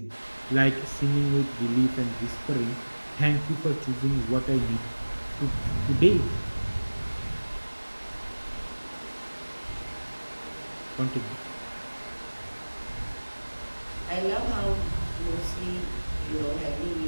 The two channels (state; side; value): inverted; both; correlation -1.00